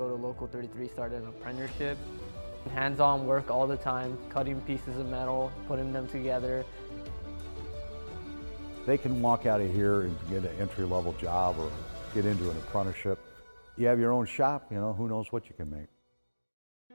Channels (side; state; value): both; inverted; correlation -1.00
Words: to Local 33, start an apprenticeship. Hands-on work all the time, cutting pieces of metal, putting them together. They can walk out of here and get an entry-level job or get into an apprenticeship. You have your own shop, who knows what you can make.